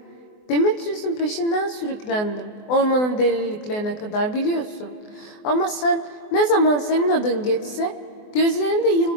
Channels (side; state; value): right; late; 24 ms